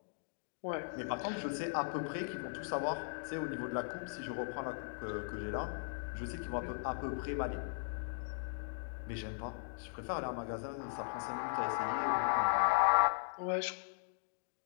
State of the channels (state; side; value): silent; right; digital silence